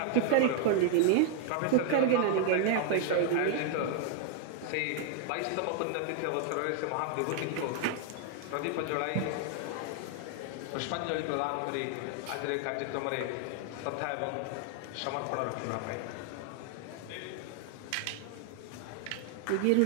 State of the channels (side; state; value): both; different; correlation 0.00